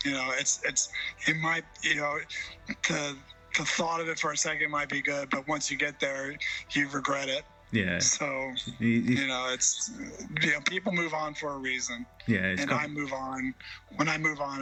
It might, the thought of it for a second might be good, but once you get there, you regret it. Yeah. So it's people move on for a reason. Yeah. I move on. When I move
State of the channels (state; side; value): identical; both; correlation 1.00